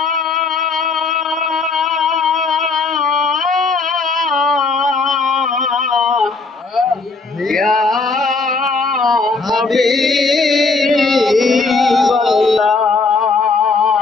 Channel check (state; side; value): quieter; right; 4.0 dB